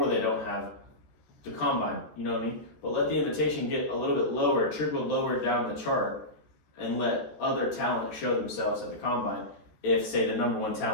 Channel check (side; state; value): right; late; 13 ms